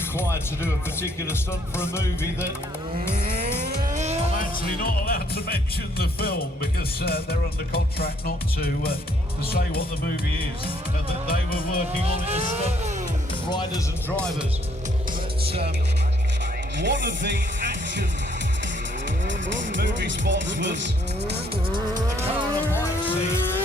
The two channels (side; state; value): both; normal; correlation 0.67